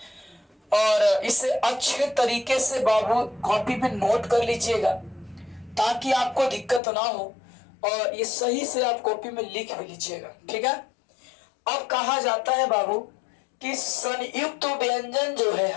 और इसे अच्छे तरीके से बाबू कॉपी पे नोट कर लीजिएगा ताकि आपको दिक्कत ना हो और ये सही से आप कॉपी में लिख भी लीजिएगा, ठीक है। अब कहा जाता है बाबू कि संयुक्त व्यंजन जो है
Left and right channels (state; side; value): drops out; right; at 6.8 s